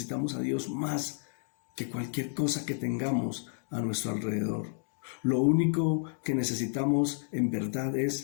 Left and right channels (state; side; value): silent; right; 57 dB below the other